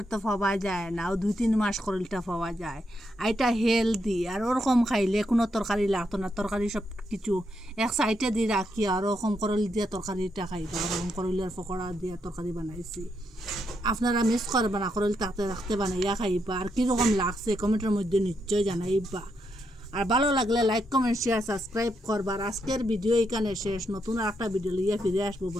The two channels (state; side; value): normal; both; correlation 0.80